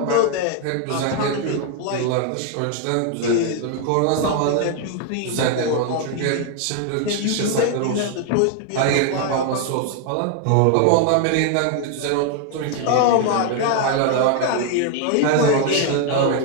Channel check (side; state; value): both; different; correlation 0.00